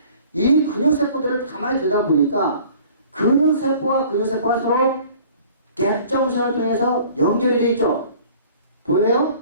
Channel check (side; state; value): both; inverted; correlation -0.50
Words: 이 근육세포들을 가만히 들여다보니까 근육세포와 근육세포가 서로 갭정선을 통해서 연결이 되어 있죠. 보여요?